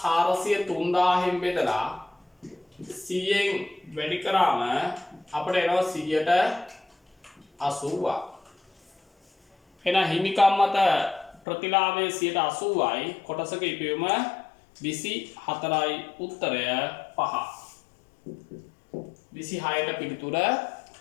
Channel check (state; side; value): drops out; right; at 11.4 s